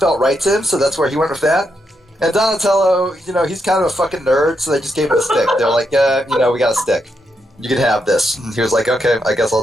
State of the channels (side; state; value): both; normal; correlation 0.82